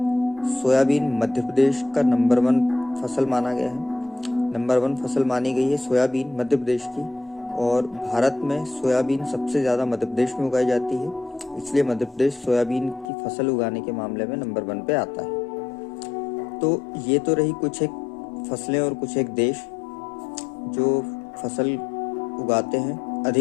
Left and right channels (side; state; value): right; drops out; at 13.1 s